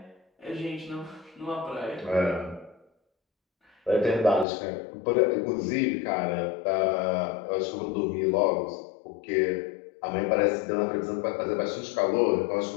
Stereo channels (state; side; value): drops out; right; at 4.5 s